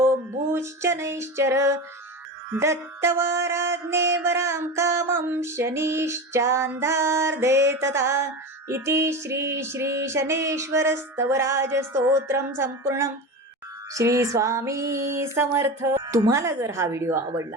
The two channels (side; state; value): both; normal; correlation 0.25